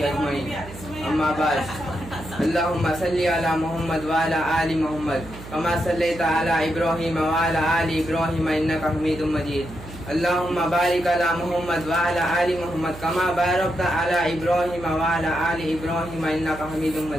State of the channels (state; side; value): noise; right; hum, 15 dB below the sound